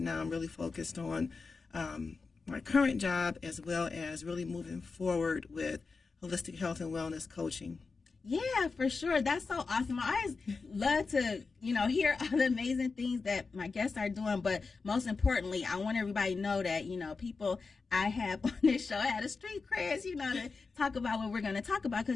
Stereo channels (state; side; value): quieter; right; 4.4 dB